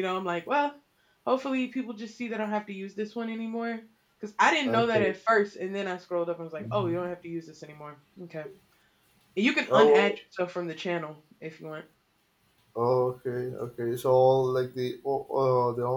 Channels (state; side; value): identical; both; correlation 1.00